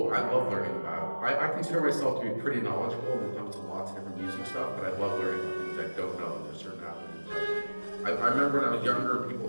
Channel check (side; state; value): both; inverted; correlation -1.00